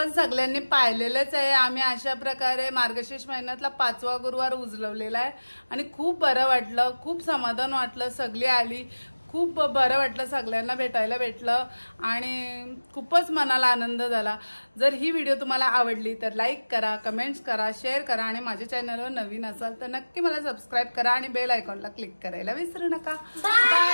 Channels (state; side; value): inverted; both; correlation -1.00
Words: सगळ्यांनी पाहिलेलंच आहे. आम्ही अशा प्रकारे मार्गशीर्ष महिन्यातला 5वा गुरुवार उजलवलेला आहे आणि खूप बरं वाटलं, खूप समाधान वाटलं. सगळी आली, खूप बरं वाटलं, सगळ्यांना भेटायला भेटलं आणि खूपच मनाला आनंद झाला. जर ही व्हिडिओ तुम्हाला आवडली तर लाईक करा, कमेंट्स करा, शेअर करा आणि माझ्या चॅनलवर नवीन असाल तर नक्की मला सबस्क्राईब करा आणि बेल आयकॉनला क्लिक करायला विसरू नका. Bye